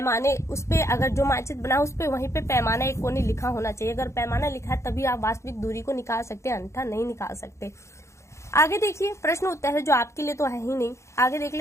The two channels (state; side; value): late; right; 0.14 ms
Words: उस पे अगर जो मानचित्र बना उस पे वहीं पे पैमाना एक कोने लिखा होना चाहिए। अगर पैमाना लिखा है तभी आप वास्तविक दूरी को निकाल सकते हैं, अन्यथा नहीं निकाल सकते। आगे देखिए प्रश्न उत्तर है जो आपके लिए तो है ही नहीं। आगे देख